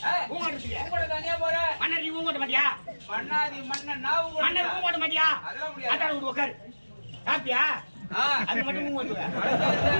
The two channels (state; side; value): inverted; both; correlation -1.00